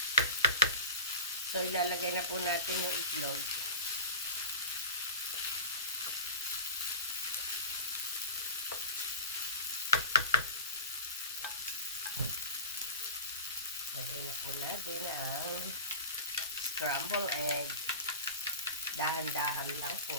So, ilalagay na po natin yung itlog. Lagay na po natin ang scrambled egg. Dahan-dahan lang po.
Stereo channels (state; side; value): inverted; both; correlation -0.33